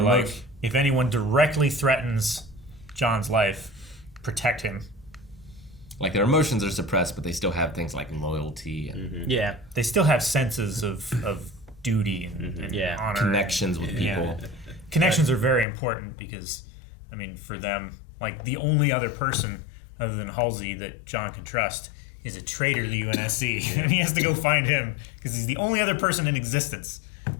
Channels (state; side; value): drops out; right; at 15.7 s